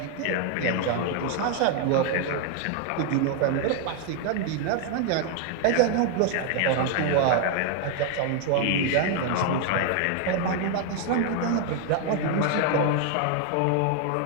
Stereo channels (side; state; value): both; different; correlation 0.00